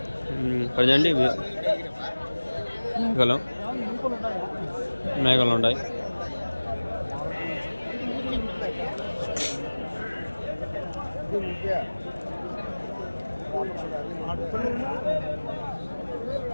ప్రజెంట్ మేకలు ఉంటాయి.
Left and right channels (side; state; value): both; inverted; correlation -1.00